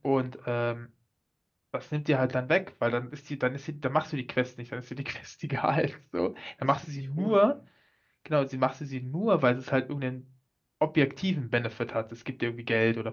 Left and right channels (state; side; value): identical; both; correlation 1.00